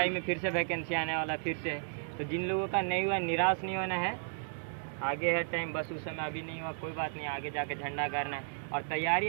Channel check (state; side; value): silent; left; digital silence